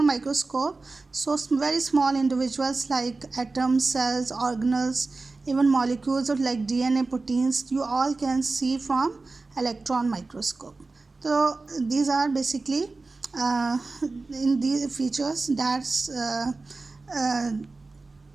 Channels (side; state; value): left; quieter; 3.6 dB